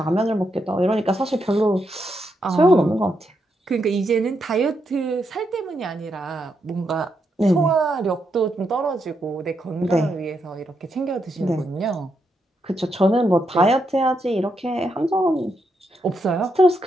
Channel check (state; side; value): normal; both; correlation 0.81